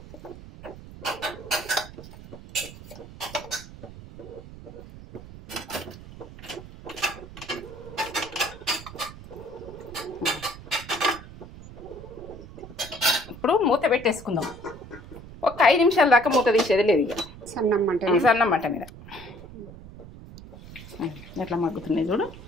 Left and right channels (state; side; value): noise; right; rumble, 16 dB below the sound